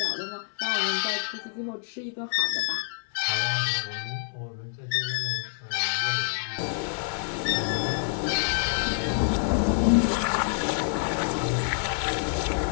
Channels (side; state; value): right; silent; 60 dB below the other